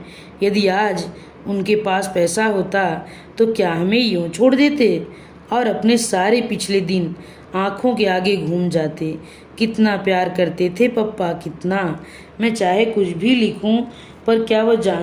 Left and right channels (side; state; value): both; identical; correlation 1.00